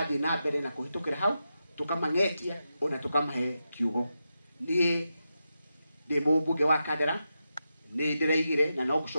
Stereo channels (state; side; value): inverted; both; correlation -0.88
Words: na mbere na kũhĩtũkĩra hau, tũkamang'etia ona tũkamahe kiugo. Niĩ ndĩ mũmbunge wa Kandara, nĩ ndĩraigire na no